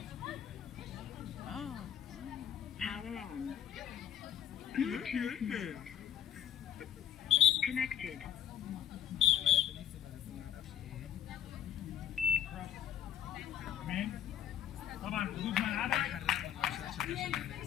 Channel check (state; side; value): quieter; right; 10.2 dB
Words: Connected. طبعا حدود ملعبك حرق ولا مش عشان